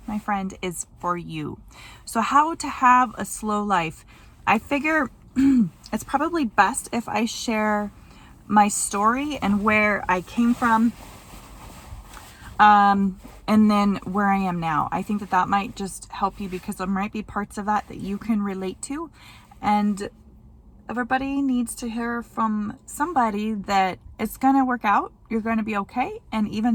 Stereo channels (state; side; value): identical; both; correlation 1.00